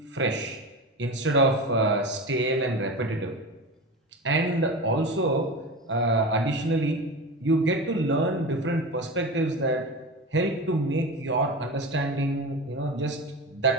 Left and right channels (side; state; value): both; normal; correlation 0.27